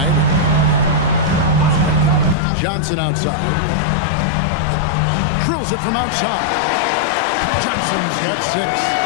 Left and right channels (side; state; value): right; drops out; at 2.4 s